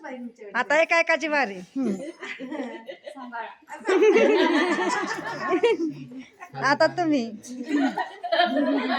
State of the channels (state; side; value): identical; both; correlation 1.00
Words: आता एक एकाची वारी. आता तुम्ही